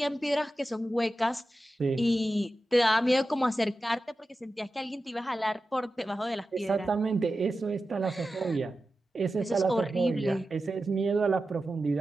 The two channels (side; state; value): both; normal; correlation 0.93